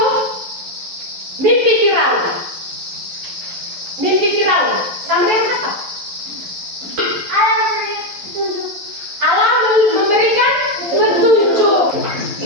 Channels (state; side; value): late; left; 11 ms